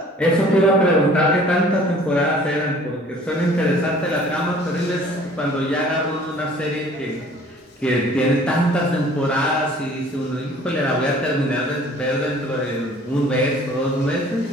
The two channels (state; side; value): normal; both; correlation 0.52